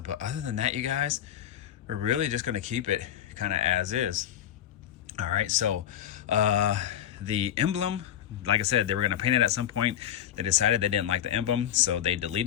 but other than that, you guys, we're really just going to keep it kind of as is. All right, so the emblem, like I said, they were going to paint it at some point. They decided they didn't like the emblem, so they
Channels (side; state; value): right; quieter; 10.8 dB